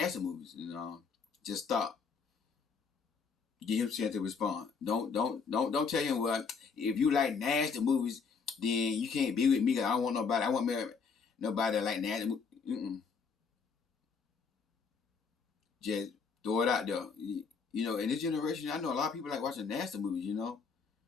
movies. Just stop. Give him a chance to respond. Don't tell him, well, if you like nasty movies, then you can't be with me because I don't want nobody. I want nobody that like nasty movies. Just throw it out there. In this generation, I know a lot of people like watching nasty movies, and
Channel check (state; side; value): quieter; right; 5.4 dB